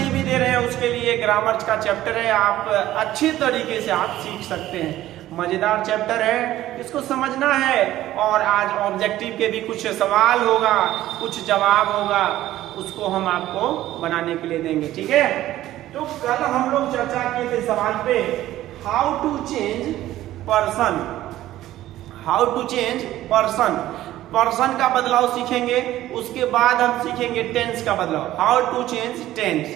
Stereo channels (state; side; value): quieter; left; 14.4 dB